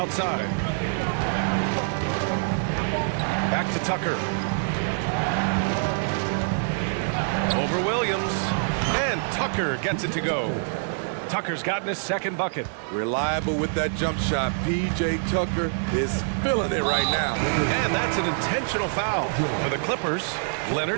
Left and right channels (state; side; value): silent; left; digital silence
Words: Back to Tucker. Over Williams. And Tucker gets it to go. Tucker's gotten his second bucket. Reliable with that jump shot. P.J. Tucker is feeling it right now. And that's an intentional foul for the Clippers.